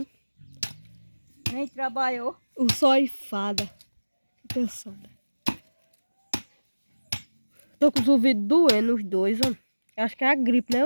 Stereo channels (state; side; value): inverted; both; correlation -1.00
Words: Nem trabalhou. O sol e fada. Tô cansada. Tô com os ouvidos doendo, os dois, ó. Acho que é a gripe, né,